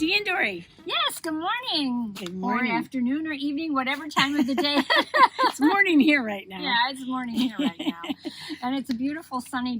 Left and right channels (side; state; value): both; identical; correlation 1.00